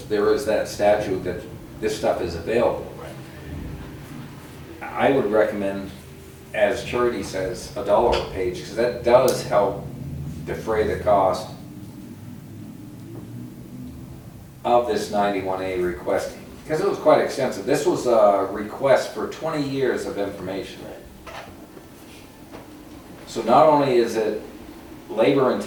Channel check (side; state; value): both; identical; correlation 1.00